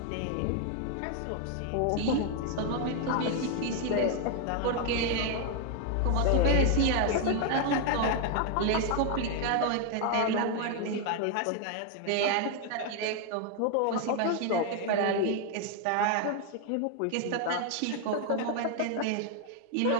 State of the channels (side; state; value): both; different; correlation 0.01